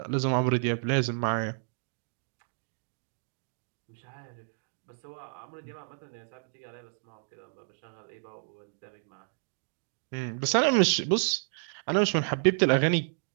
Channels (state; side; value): silent; left; digital silence